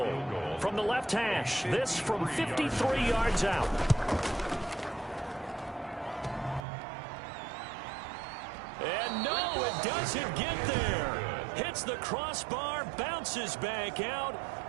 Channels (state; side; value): drops out; left; at 6.7 s